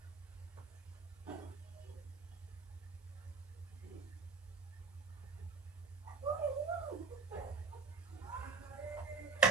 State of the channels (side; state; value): left; quieter; 4.7 dB